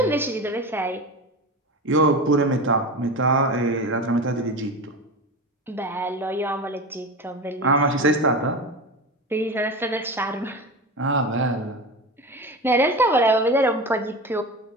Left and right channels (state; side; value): normal; both; correlation 0.27